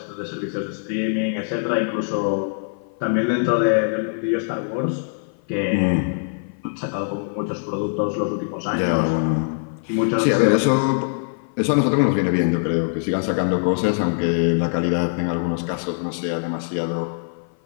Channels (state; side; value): silent; right; 55 dB below the other